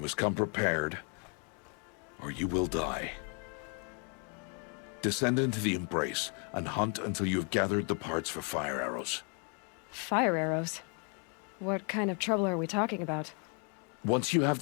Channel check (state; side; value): quieter; right; 38.2 dB